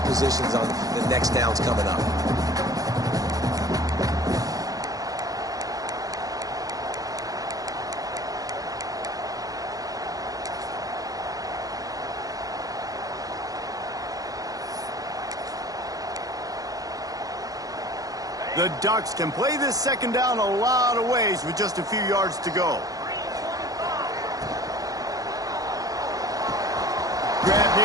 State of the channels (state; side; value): late; left; 0.17 ms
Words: on the next downs coming up. The Ducks can play this second down a lot of ways with just a few yards to go. Grab